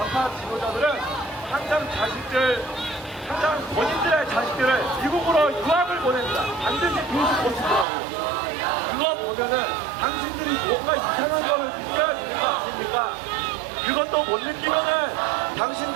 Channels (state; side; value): drops out; left; at 7.9 s